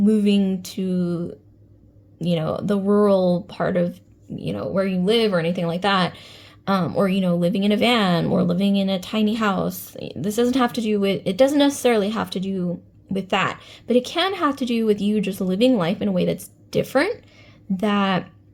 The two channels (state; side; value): identical; both; correlation 1.00